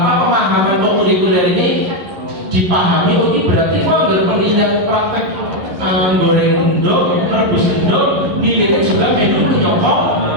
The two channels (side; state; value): left; late; 11 ms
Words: kurikuler ini dipahami, oh ini berarti kok penilaian praktek goreng endok, merebus endok, nilainya juga menu menyokong